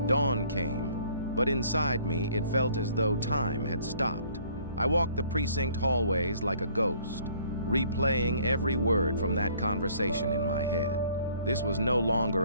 Dawn came, but inside me it felt as though time had stopped. I walked the precinct hallways like a ghost, replaying every word from that conversation in my head. This was no longer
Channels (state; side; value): inverted; both; correlation -0.59